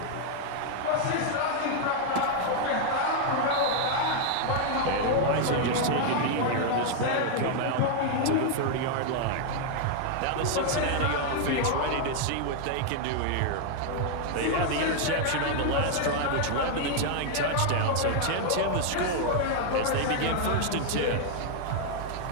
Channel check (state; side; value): different; both; correlation 0.00